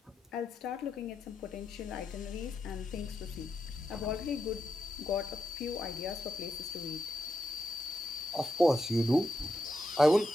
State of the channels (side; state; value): both; normal; correlation 0.84